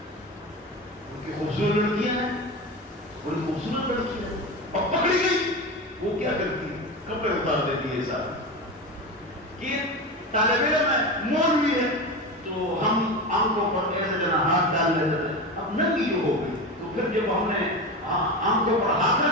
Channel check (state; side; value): normal; both; correlation 0.23